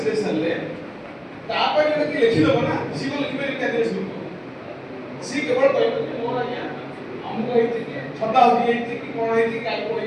सरले तापर कि लिखि दबो ना सी को लिखि पारि क्या देश लोग सी केवल कहबो कि मोर आज्ञा हमको हेति कि छता होई हेति कि कोन हेति काई को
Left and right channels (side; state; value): both; identical; correlation 1.00